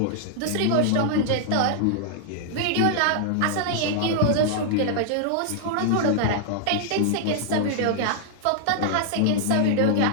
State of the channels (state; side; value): different; both; correlation -0.01